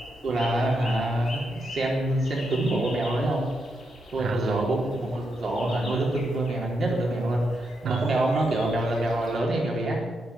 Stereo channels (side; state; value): both; normal; correlation 0.83